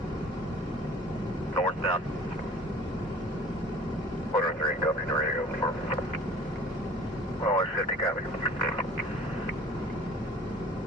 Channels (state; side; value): normal; both; correlation 0.48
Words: Northbound. 103, copy, ready to go. Oh, 50, copy.